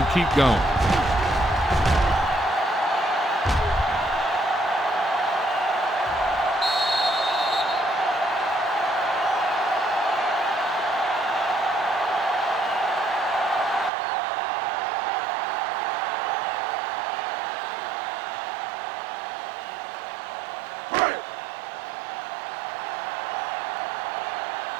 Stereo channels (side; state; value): left; drops out; at 13.9 s